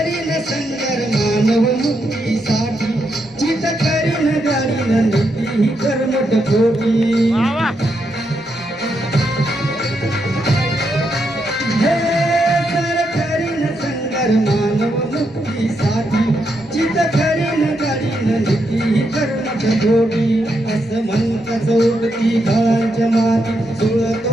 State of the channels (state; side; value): normal; both; correlation 0.81